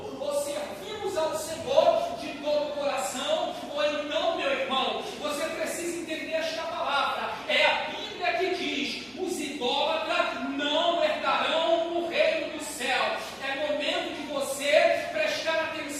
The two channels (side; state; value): both; identical; correlation 1.00